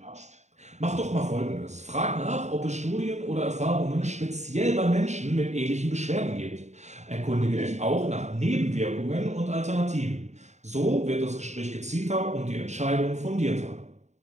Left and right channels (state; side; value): late; left; 0.33 ms